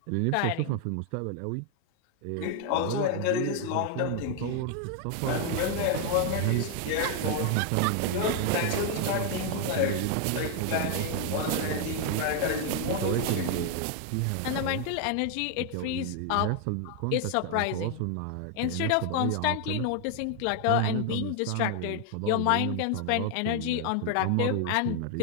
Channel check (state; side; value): different; both; correlation 0.00